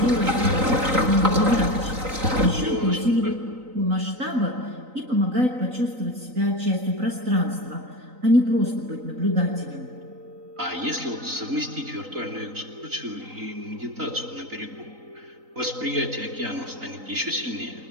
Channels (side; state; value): left; late; 3.9 ms